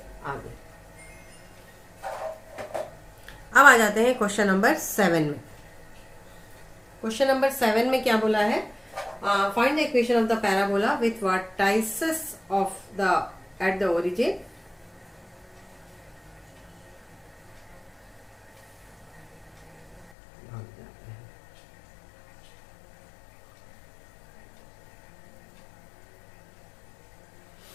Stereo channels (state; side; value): drops out; right; at 20.1 s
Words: आ गई। अब आ जाते हैं क्वेश्चन नंबर 7 में। क्वेश्चन नंबर 7 में क्या बोला है, find the equation of the parabola with vertices of the at the origin.